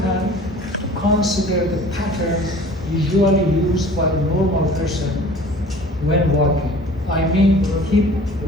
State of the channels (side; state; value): both; normal; correlation 0.46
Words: to consider the pattern usually used by a normal person when walking. I mean hip